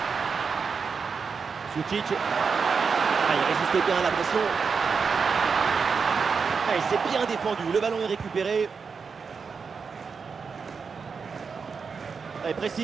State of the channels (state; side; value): quieter; left; 5.5 dB